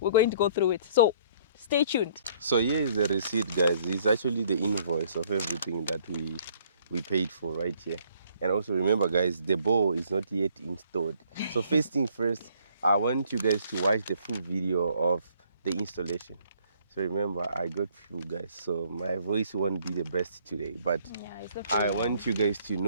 going to go through it. So stay tuned. So here is the receipt, guys. It's actually the invoice of everything that we paid for right here. And also remember, guys, the bowl is not yet installed. So first thing first, I want you guys to watch the full video of the installation. So remember, I got few guys, so my voice won't be the best today, but I want you guys to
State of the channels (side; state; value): both; inverted; correlation -0.62